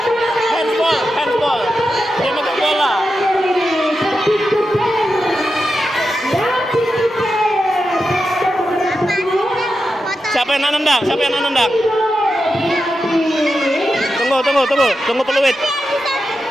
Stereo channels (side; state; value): both; normal; correlation 0.89